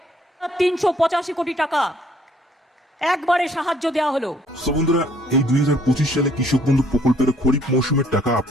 385 কোটি টাকা একবারে সাহায্য দেওয়া হলো। সো বন্ধুরা, এই 2025 সালে কৃষক বন্ধু প্রকল্পের খরিফ মৌসুমের টাকা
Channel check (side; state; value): both; normal; correlation 0.63